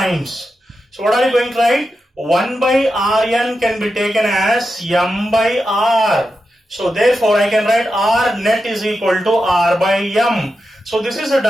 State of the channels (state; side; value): normal; both; correlation 0.89